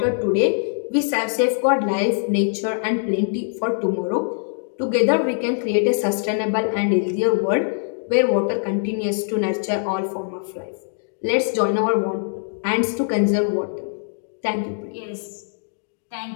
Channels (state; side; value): silent; right; digital silence